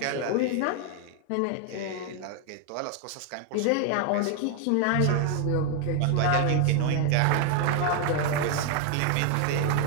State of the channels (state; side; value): different; both; correlation 0.00